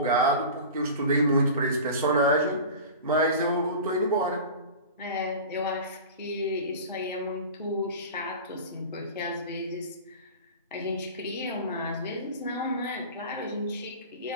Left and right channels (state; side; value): inverted; both; correlation -0.34